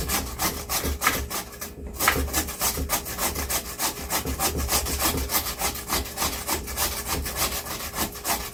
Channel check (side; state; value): both; identical; correlation 1.00